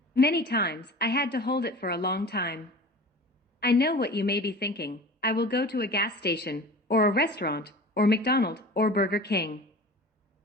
Many times, I had to hold it for a long time. I know what you may be thinking. I will go to a gas station, or a restaurant, or McDonald's, or Burger King.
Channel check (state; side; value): normal; both; correlation 0.38